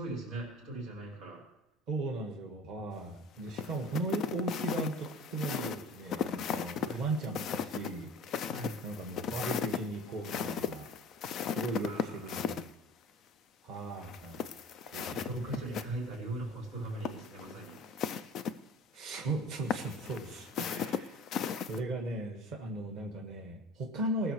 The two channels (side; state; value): both; normal; correlation 0.43